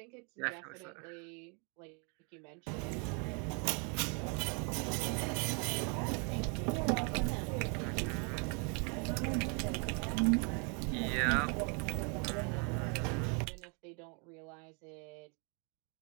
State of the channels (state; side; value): quieter; left; 35.9 dB